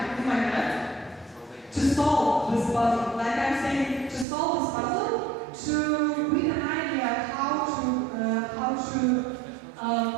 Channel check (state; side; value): drops out; left; at 4.2 s